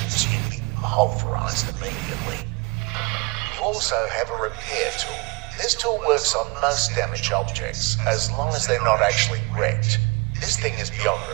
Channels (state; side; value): quieter; left; 28.5 dB